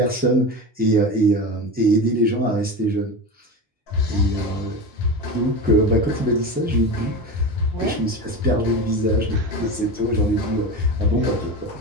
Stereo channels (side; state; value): both; normal; correlation 0.26